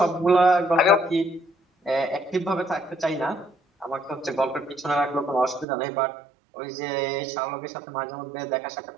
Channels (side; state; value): left; drops out; at 5.7 s